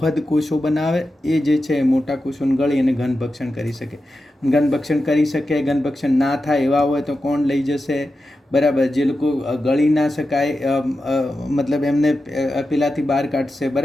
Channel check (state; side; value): normal; both; correlation 0.91